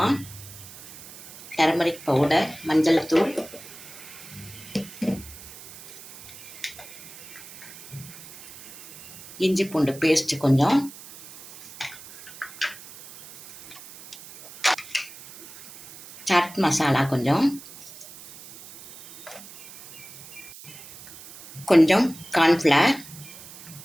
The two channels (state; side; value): noise; right; hiss, 17 dB below the sound